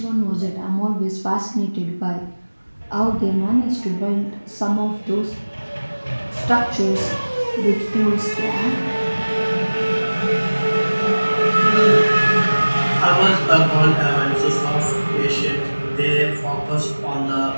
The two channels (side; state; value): both; inverted; correlation -1.00